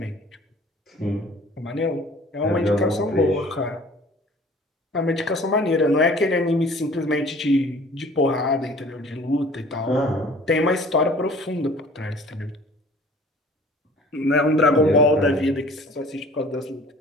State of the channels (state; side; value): normal; both; correlation 0.49